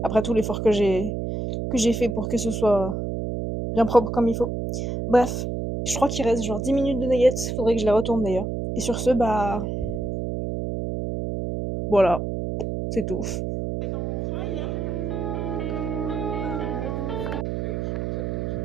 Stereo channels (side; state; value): right; noise; hum, 3 dB below the sound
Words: Après tout l'effort que j'ai fait pour que ce soit bien propre comme il faut. Bref, je crois qu'il reste genre 10 minutes de nuggets. Faudrait que je les retourne d'ailleurs. Et sur ce, bah voilà, c'est tout.